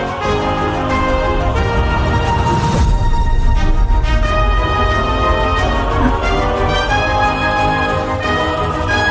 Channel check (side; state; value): both; identical; correlation 1.00